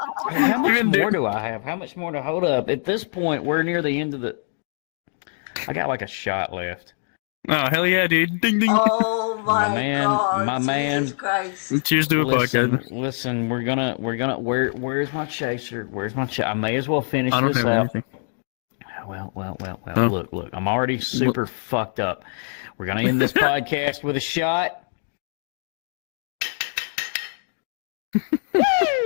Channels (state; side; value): silent; right; digital silence